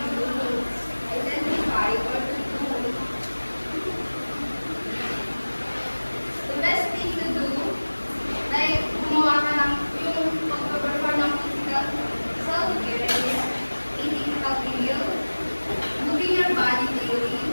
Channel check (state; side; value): inverted; both; correlation -1.00